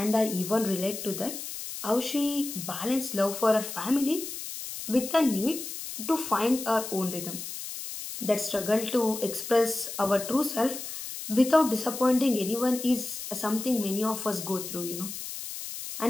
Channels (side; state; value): left; noise; hiss, 8 dB below the sound